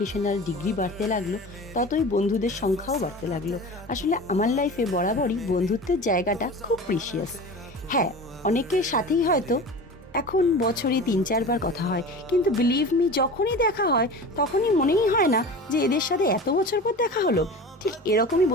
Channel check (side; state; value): both; normal; correlation 0.34